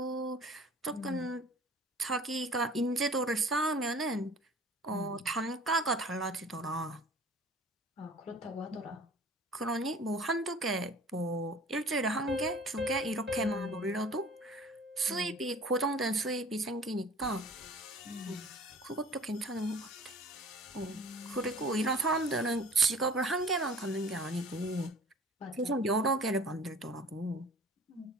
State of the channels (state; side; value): normal; both; correlation 0.47